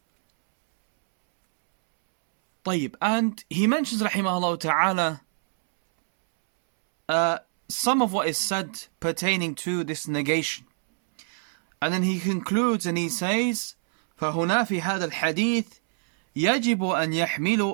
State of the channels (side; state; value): left; silent; 62 dB below the other